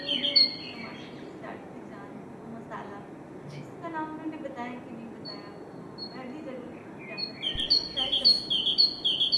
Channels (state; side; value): identical; both; correlation 1.00